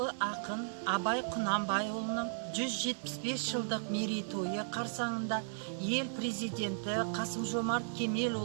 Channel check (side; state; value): left; silent; 54 dB below the other